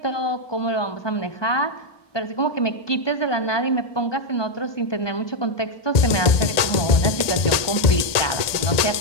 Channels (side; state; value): right; late; 1.8 ms